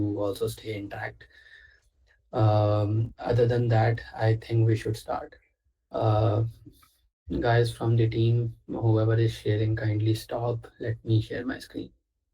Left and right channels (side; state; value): both; identical; correlation 1.00